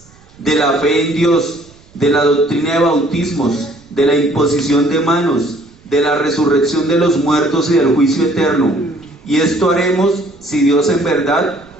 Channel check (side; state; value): right; noise; rumble, 28 dB below the sound